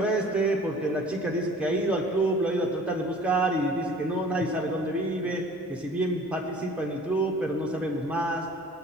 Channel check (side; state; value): both; normal; correlation 0.48